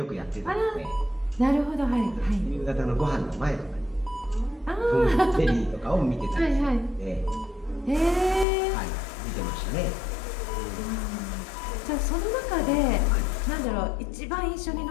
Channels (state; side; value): drops out; right; at 8.5 s